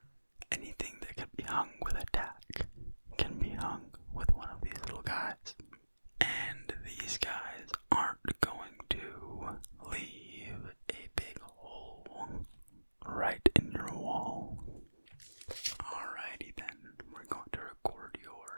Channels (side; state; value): both; inverted; correlation -1.00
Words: Anything that can be hung with a tack can be hung with one of these little guys. And these guys aren't going to leave a big hole right in your wall. Alrighty then, we're going to record